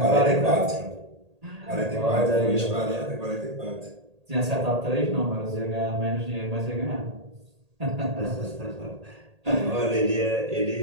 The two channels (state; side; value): late; left; 1.8 ms